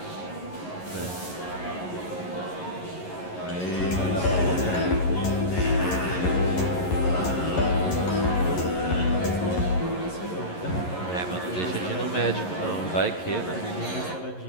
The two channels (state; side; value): late; right; 11 ms